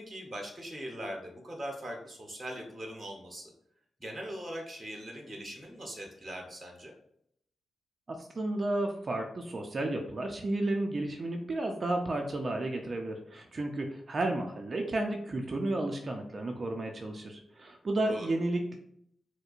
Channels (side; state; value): both; normal; correlation 0.91